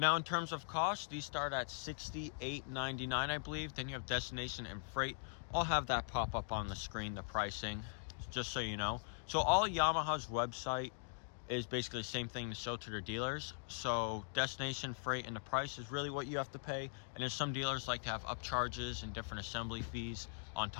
in terms of cost, these start at $68.99, I believe. Then you have destination and freight. I'll have that pop up on the screen, the pricing, just so you know. So all Yamaha's website is basically the same thing to show to their dealers. So destination, freight, and the price is really what you have to pay. And there's some dealers like to have upcharges and different assembly fees on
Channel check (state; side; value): silent; right; digital silence